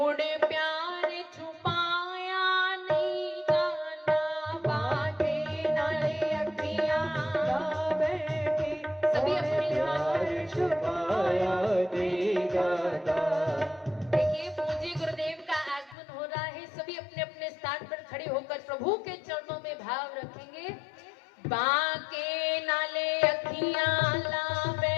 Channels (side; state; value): right; drops out; at 16.0 s